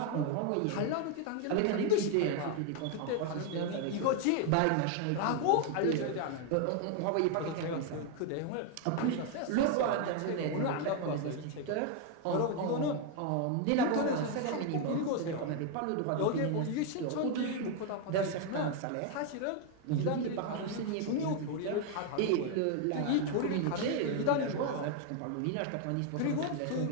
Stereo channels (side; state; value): both; different; correlation 0.01